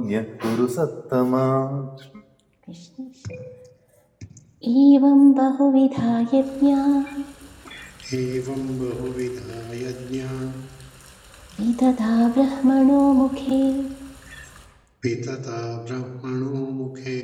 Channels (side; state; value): both; identical; correlation 1.00